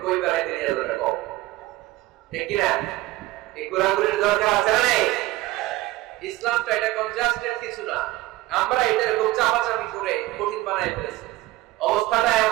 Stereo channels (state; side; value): quieter; left; 18.0 dB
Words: কই বেড়াইতে নিয়ে যাবে কম, ঠিক কিনা? এই ঘোরাঘুরির দরকার আছে না নাই? ইসলামটা এটা কনজাস্টেড কিছু না, আমরা এটা এরকম চাপাচাপি করে কঠিন বানাই ফেলেছি। অবস্থাটা